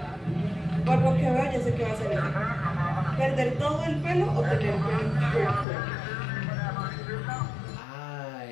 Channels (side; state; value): right; drops out; at 5.7 s